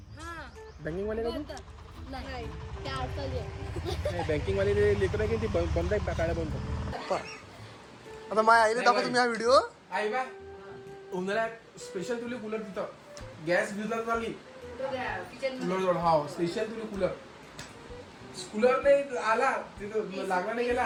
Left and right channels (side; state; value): both; identical; correlation 1.00